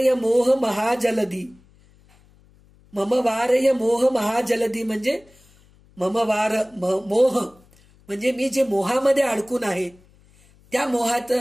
मोह महाजलधी, मम वारय मोह महाजलधी म्हणजे मोह म्हणजे मी जे मोहामध्ये अडकून आहे त्या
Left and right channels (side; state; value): left; noise; hum, 29 dB below the sound